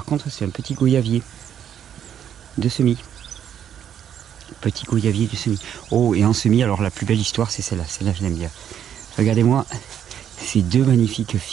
contre, c'est un petit goyavier de semis. Petit goyavier de semis. Oh, et en semis, alors la plus belle histoire, c'est celle-là. Celle-là, je l'aime bien. Regardez-moi ces deux magnifiques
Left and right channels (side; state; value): left; quieter; 9.4 dB